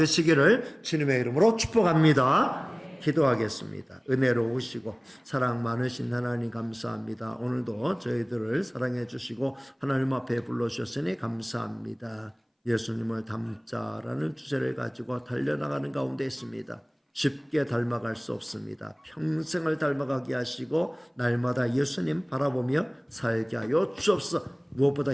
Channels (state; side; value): identical; both; correlation 1.00